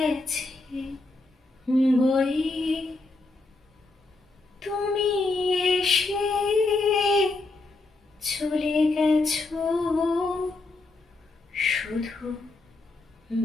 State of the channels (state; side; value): quieter; right; 3.3 dB